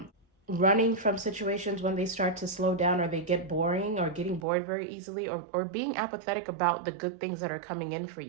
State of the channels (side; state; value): left; drops out; at 4.5 s